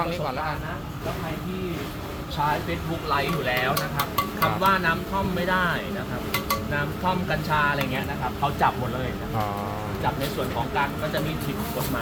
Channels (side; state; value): both; identical; correlation 1.00